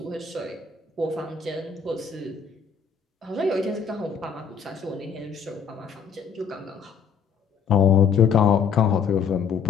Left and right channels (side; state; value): right; quieter; 6.5 dB